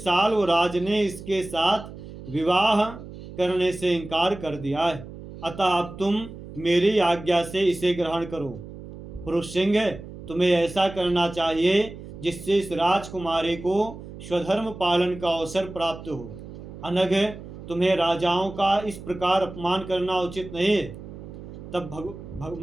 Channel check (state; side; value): noise; right; hum, 14 dB below the sound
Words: ने इसके साथ विवाह करने से इनकार कर दिया है। अतः अब तुम मेरी आज्ञा से इसे ग्रहण करो। पुरुष सिंह, तुम्हें ऐसा करना चाहिए जिससे इस राजकुमारी को स्वधर्म पालन का अवसर प्राप्त हो। अनग, तुम्हें राजाओं का इस प्रकार अपमान करना उचित नहीं है। तब